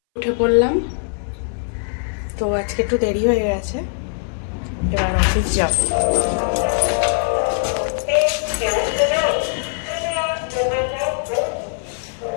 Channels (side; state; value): right; silent; 62 dB below the other